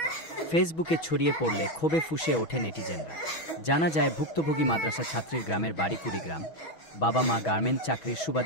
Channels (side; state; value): right; late; 6.2 ms